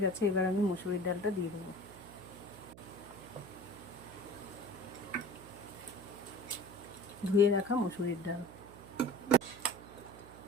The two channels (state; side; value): noise; right; hum, 17 dB below the sound